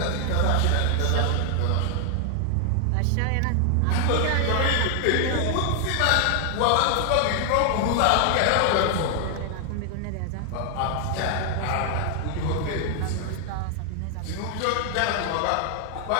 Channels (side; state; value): both; different; correlation 0.00